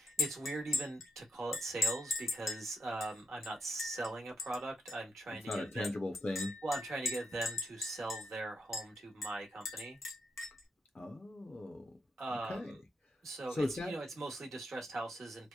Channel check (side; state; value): both; normal; correlation 0.81